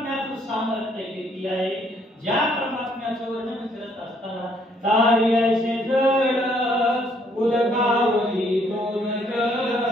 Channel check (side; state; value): both; normal; correlation 0.66